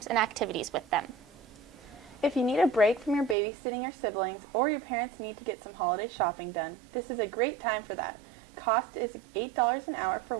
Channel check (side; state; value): left; drops out; at 3.4 s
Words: and activities with them. If you need a break from your babysitting or siblings, or your parents need to get some holiday shopping done, this is a great time for that. Cost is $8 an hour for